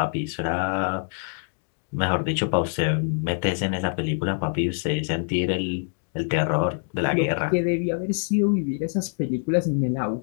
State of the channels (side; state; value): right; silent; digital silence